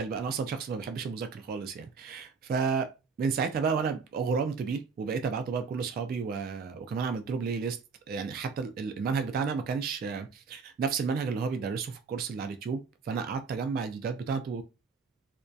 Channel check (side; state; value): left; quieter; 5.1 dB